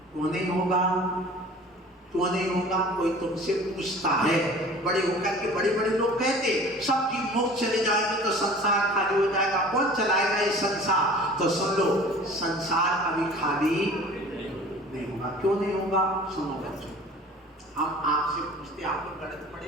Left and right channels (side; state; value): both; normal; correlation 0.44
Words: क्यों नहीं होगा? क्यों नहीं होगा? कोई तुमसे पूछता है, बड़े होकर के बड़े बड़े लोग कहते सब जीव मोक्ष चले जाएंगे तो संसार खाली हो जाएगा, कौन चलाएगा ये संसार? तो सुन लो, संसार कभी खाली नहीं होगा। क्यों नहीं होगा? सुनो बच्चों, हम आपसे पूछते, आप लोग गणित